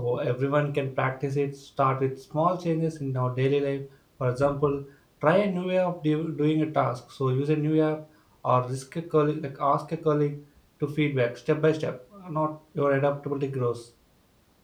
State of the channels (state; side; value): identical; both; correlation 1.00